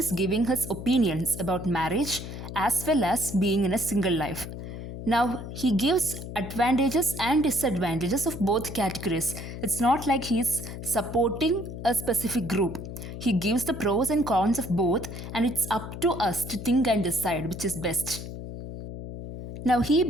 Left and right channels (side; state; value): left; noise; hum, 9 dB below the sound